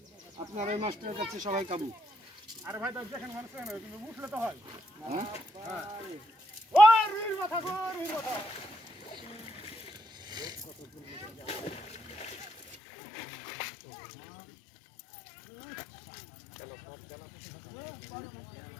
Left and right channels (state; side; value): drops out; right; at 12.8 s